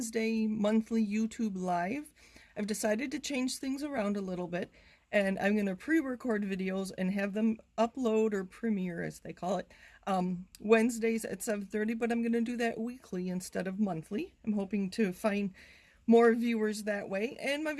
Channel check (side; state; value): both; identical; correlation 1.00